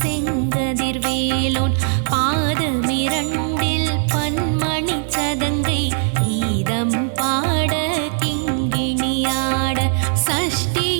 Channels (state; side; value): silent; left; digital silence